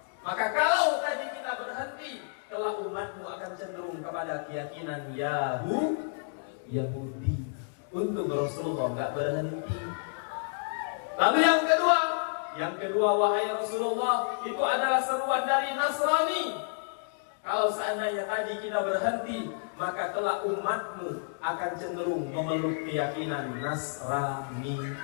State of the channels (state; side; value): silent; right; digital silence